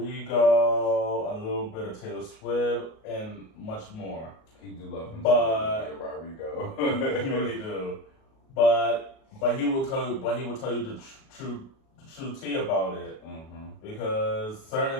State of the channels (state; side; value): late; right; 37 ms